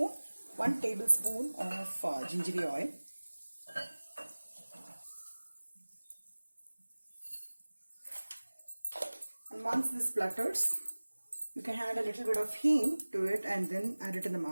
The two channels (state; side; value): inverted; both; correlation -1.00